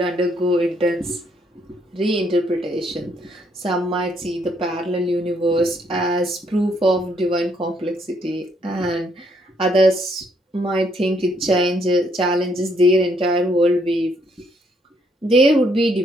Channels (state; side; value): normal; both; correlation 0.71